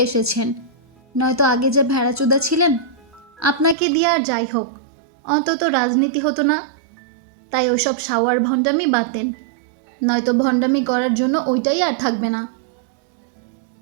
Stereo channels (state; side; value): drops out; left; at 3.8 s